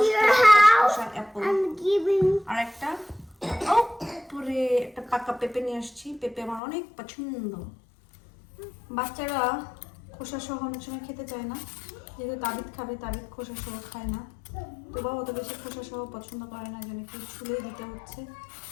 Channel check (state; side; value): drops out; right; at 6.6 s